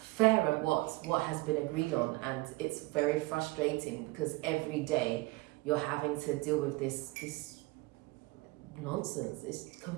and what has been agreed on. And it's very frustrating because every day you're having to deal with this nonsense. It's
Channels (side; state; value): left; quieter; 22.1 dB